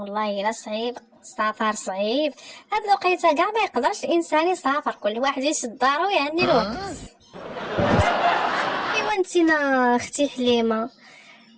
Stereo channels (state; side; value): identical; both; correlation 1.00